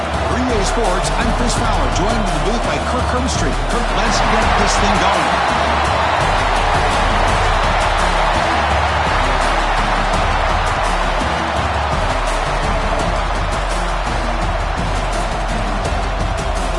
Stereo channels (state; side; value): identical; both; correlation 1.00